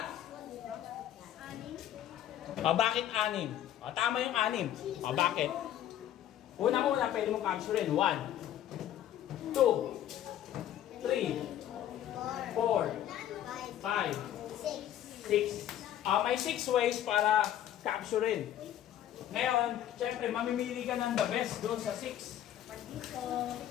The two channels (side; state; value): right; quieter; 11.6 dB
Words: Bakit 6? Tama yung 6. Bakit? Una-una pwede mong capturein. 1, 2, 3, 4, 5, 6. May 6 ways para capturein. Ngayon, syempre, mamimili ka ng the best doon sa 6.